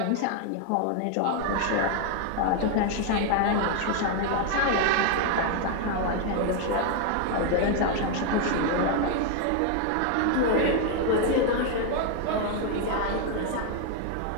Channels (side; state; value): both; different; correlation 0.00